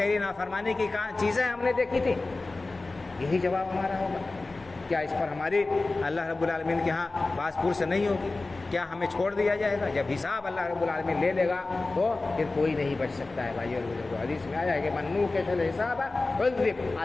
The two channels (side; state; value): right; quieter; 3.3 dB